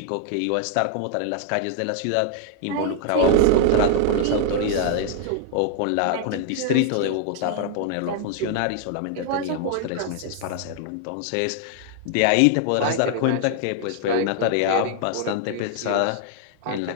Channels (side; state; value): both; different; correlation 0.00